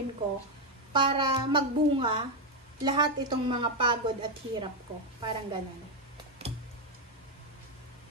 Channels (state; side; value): normal; both; correlation 0.05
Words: ko para magbunga lahat itong mga pagod at hirap ko. Parang ganun.